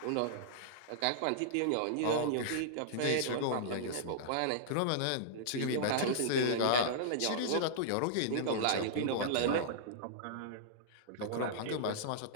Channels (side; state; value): both; different; correlation -0.02